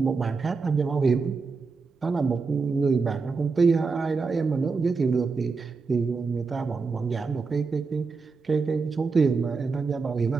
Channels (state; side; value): quieter; left; 4.6 dB